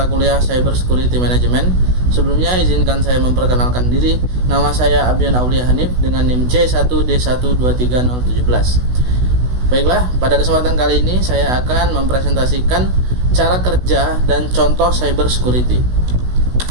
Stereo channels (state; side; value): late; left; 16 ms